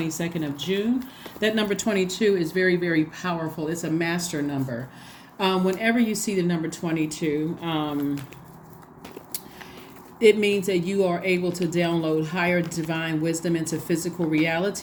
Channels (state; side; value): identical; both; correlation 1.00